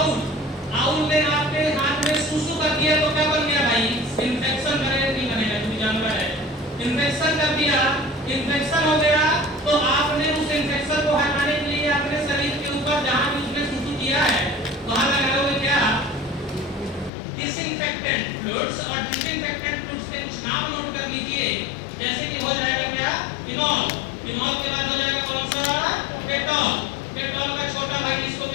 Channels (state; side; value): drops out; right; at 17.1 s